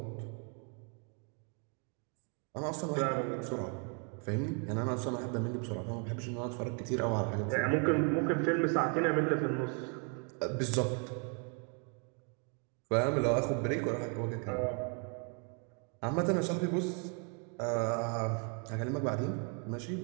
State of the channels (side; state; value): left; quieter; 38.5 dB